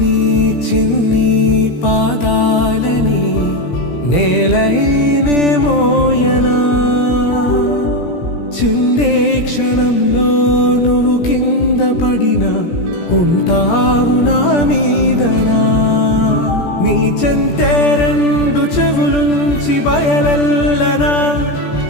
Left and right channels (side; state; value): right; late; 17 ms